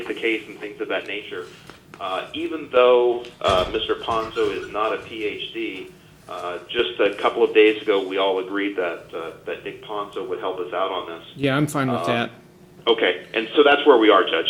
the case and things of that nature. Even though Mr. Ponzo is not a PhD, just a couple of days ago we all agreed that Nick Ponzo would help us out on this. Yeah, I'm fine with that. Okay, and so that's where we are, Judge.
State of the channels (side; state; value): both; identical; correlation 1.00